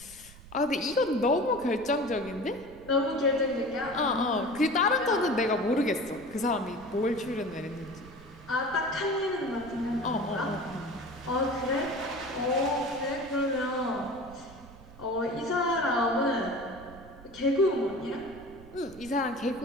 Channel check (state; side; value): noise; right; rumble, 20 dB below the sound